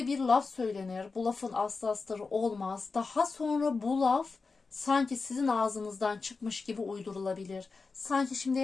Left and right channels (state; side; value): quieter; right; 4.3 dB